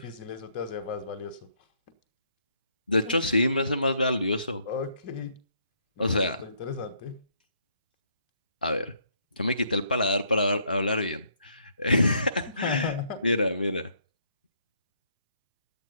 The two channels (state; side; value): inverted; both; correlation -0.71